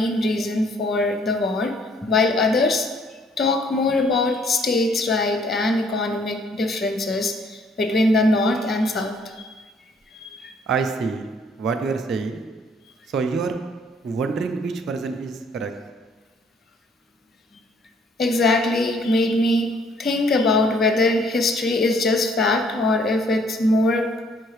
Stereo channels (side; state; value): both; normal; correlation 0.63